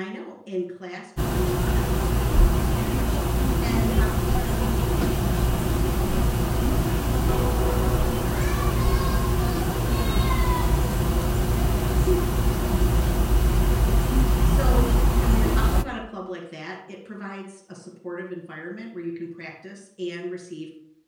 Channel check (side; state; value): both; identical; correlation 1.00